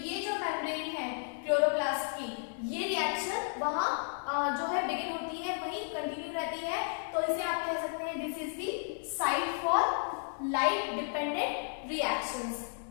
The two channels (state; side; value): silent; right; 56 dB below the other